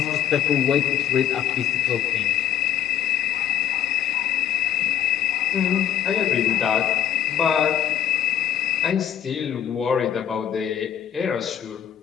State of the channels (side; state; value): right; quieter; 10.1 dB